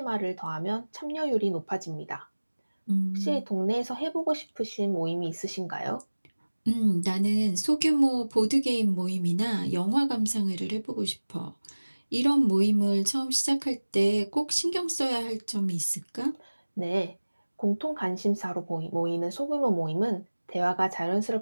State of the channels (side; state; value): both; inverted; correlation -1.00